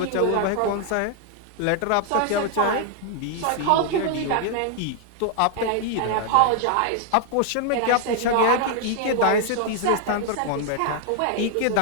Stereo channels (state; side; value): different; both; correlation 0.00